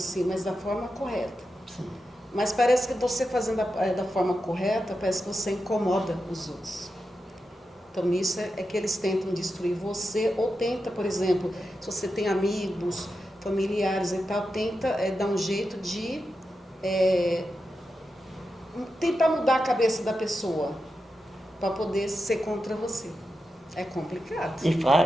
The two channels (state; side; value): normal; both; correlation 0.89